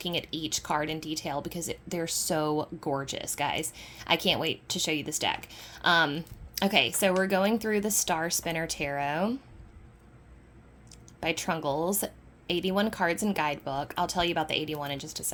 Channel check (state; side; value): identical; both; correlation 1.00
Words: at each card in detail because they're so gorgeous, guys. I can't wait to show you this deck. Okay, so we're going through the Star Spinner Tarot by Trungles, 81 cards and guidebook. I'll tell you about the 81 in just a